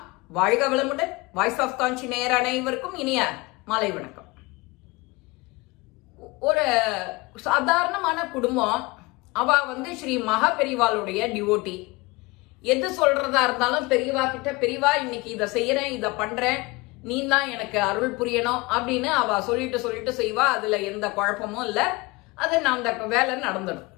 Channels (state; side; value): quieter; right; 24.0 dB